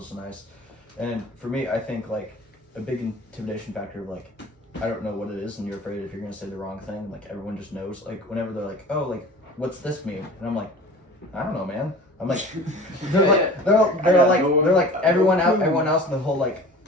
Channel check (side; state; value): both; normal; correlation 0.40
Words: nice. And for me, I think like a big intimidation factor of like, I don't know what it is, and you're afraid if you're gonna say the wrong thing. Like everyone just knows. Like whenever they're like, "Oh, like what's this mean?" and I'm like, "I don't know, man." I'm like, they're like everyone else in the whole like